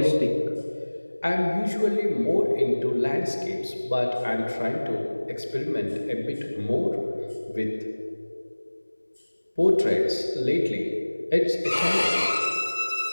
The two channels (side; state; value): both; inverted; correlation -1.00